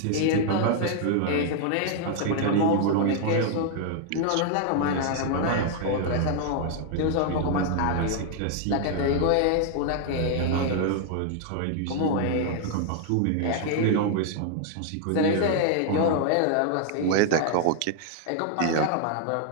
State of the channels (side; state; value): both; different; correlation 0.00